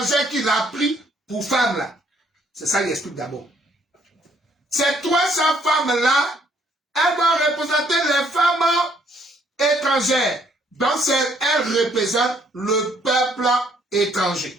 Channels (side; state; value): both; normal; correlation 0.66